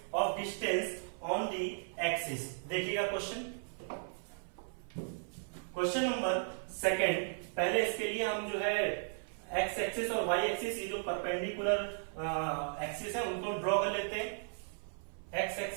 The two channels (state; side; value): silent; left; 54 dB below the other